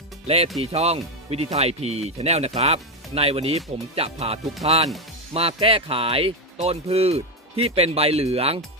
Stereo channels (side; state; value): both; normal; correlation 0.08